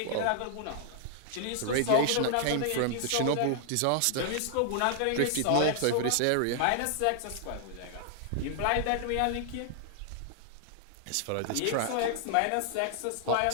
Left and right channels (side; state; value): both; different; correlation 0.00